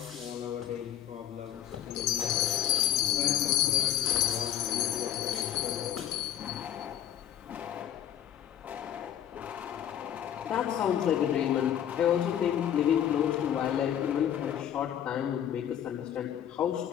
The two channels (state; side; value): quieter; right; 10.5 dB